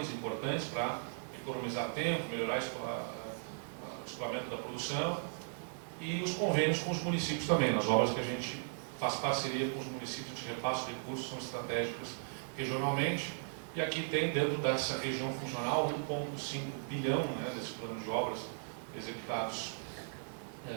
importantes para economizar tempo, melhorar o escoamento da produção, e os convênios com os municípios também. Nas obras que a gente faz parceria com os municípios, a gente repassa os recursos, são estratégicas regionalmente, e aqui tem dentro dessa região funcional 1,5 bilhão, né, desse plano de obras executados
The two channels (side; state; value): left; silent; digital silence